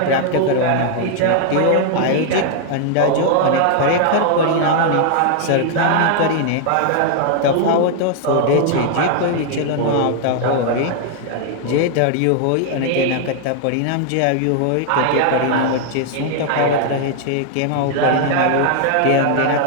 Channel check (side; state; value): both; different; correlation 0.00